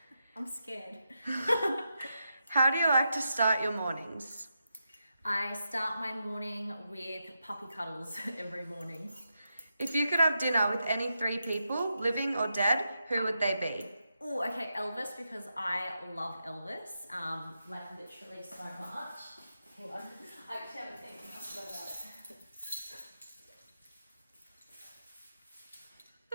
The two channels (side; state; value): both; inverted; correlation -0.86